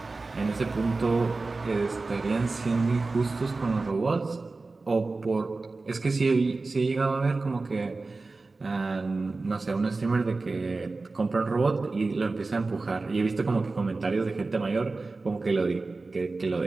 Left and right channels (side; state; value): left; quieter; 3.6 dB